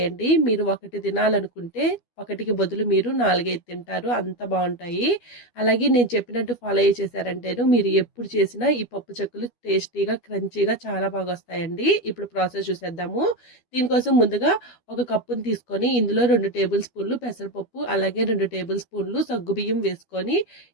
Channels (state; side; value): late; right; 12 ms